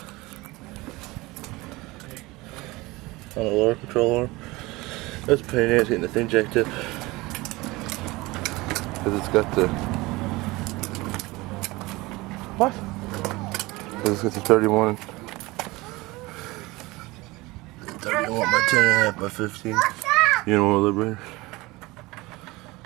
On the lower control arm. That's a pain in the ass getting the thing jacked up. Because it's got the... What? Because it's got the 31 by 10.5 by 15. You know what, liberator?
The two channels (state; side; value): quieter; left; 21.6 dB